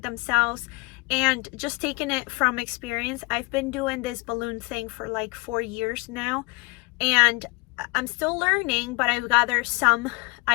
themselves. And just taking it from experience, I've been doing this balloon thing for like 4 years now. And I'm still learning, but I've gathered some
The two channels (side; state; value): right; quieter; 26.6 dB